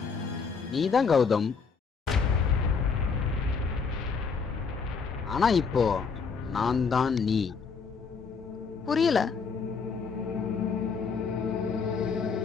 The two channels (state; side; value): quieter; right; 5.4 dB